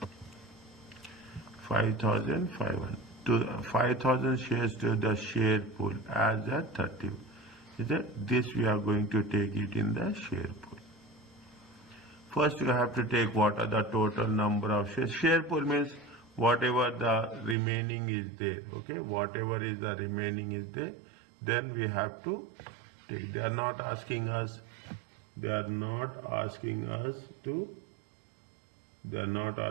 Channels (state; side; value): drops out; left; at 17.6 s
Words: 5,500. To 5,000 shares to the share pool as a 30. Is that this we are going to take it in the share pool. First you have to take what are the total number of shares. Share pool means whatever the remaining is there. Okay, whatever is the remaining is there. Then we have to take. They are not asking us. They are not asking us to. They are not